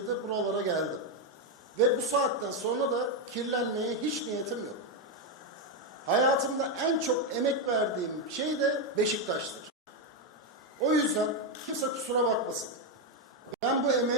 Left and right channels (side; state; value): both; normal; correlation 0.05